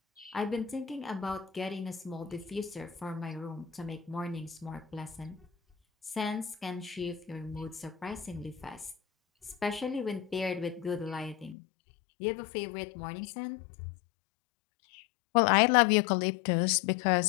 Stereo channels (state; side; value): drops out; right; at 11.6 s